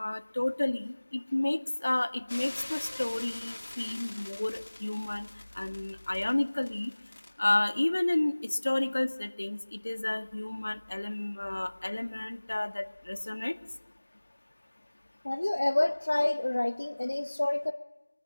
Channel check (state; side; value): inverted; both; correlation -1.00